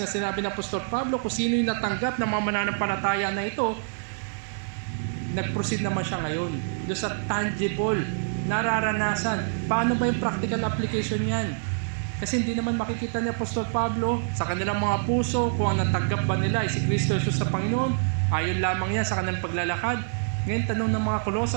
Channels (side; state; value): left; silent; digital silence